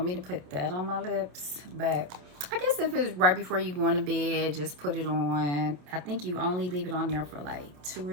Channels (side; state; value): left; late; 27 ms